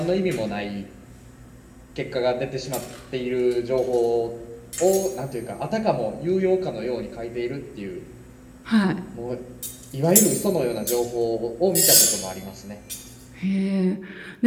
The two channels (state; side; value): identical; both; correlation 1.00